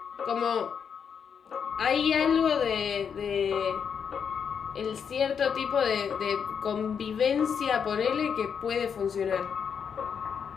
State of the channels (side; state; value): right; quieter; 7.1 dB